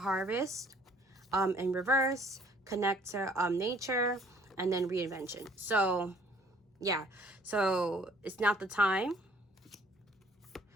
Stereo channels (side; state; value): both; normal; correlation 0.58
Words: in reverse, connect to nature, and then reinvention. So Yeah, so it's not the time.